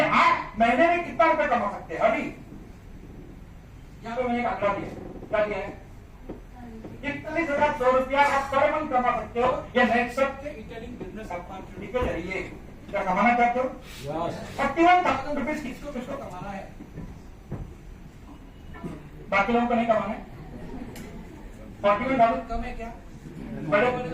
आप महीने में कितना रुपए कमा सकते हैं। अभी यहाँ पे मैंने एक आंकड़ा दिया, क्या दिया है? 41,100 रुपया आप पर मंथ कमा सकते हो, या नेटसप के रिटेलिंग बिजनेस अपॉर्चुनिटी के जरिए। क्या कमाना चाहते हो? 41,000 रुपीज किसको किसको कमाना है? बाकी लोगों को नहीं कमाना है। 41,000 कम है क्या? बड़े बड़े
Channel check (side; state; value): both; identical; correlation 1.00